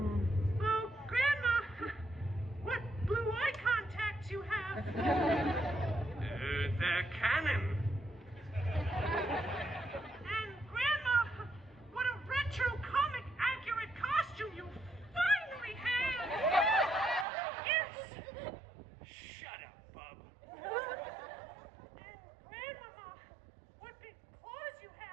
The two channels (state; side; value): drops out; left; at 17.2 s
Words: Oh, Grandma! What blue eye contacts you have? They're canon. And Grandma, what a retro comic accurate costume you finally have! Yes! Shut up, Bub. And Grandmama, what big claws you